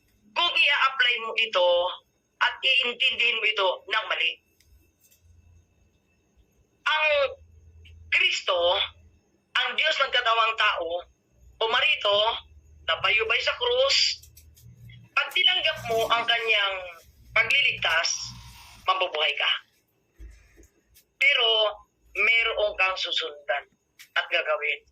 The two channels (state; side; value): identical; both; correlation 1.00